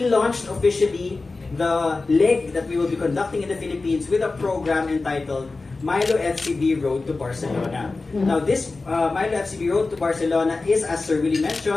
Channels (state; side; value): quieter; right; 3.6 dB